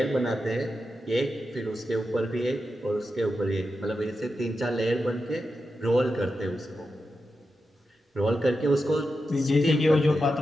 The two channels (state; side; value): normal; both; correlation 0.89